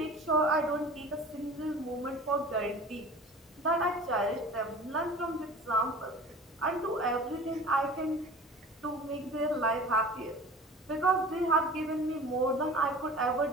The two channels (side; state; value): both; normal; correlation 0.41